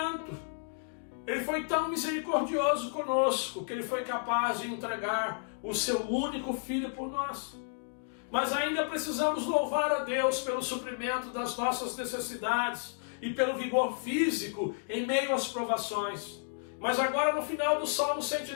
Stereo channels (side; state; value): right; silent; digital silence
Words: Ele foi tão misericordioso conosco que Ele foi capaz de entregar o seu único Filho por nós. Mas ainda precisamos louvar a Deus pelo suprimento das nossas necessidades e pelo vigor físico em meio às provações. Mas agora no final do Salmo